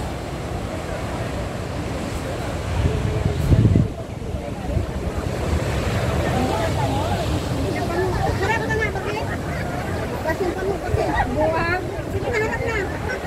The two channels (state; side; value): identical; both; correlation 1.00